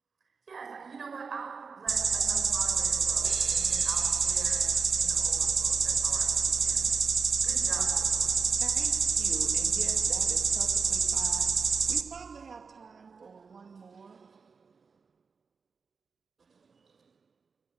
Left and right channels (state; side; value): quieter; left; 5.2 dB